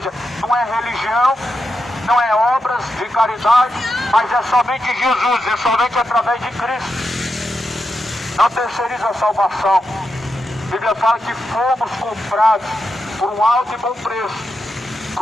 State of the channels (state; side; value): normal; both; correlation 0.87